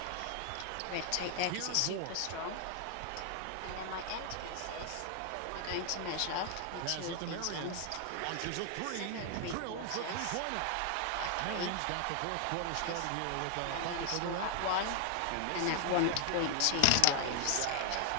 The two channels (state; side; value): different; both; correlation 0.00